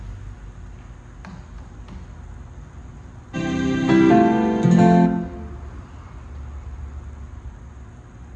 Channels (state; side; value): identical; both; correlation 1.00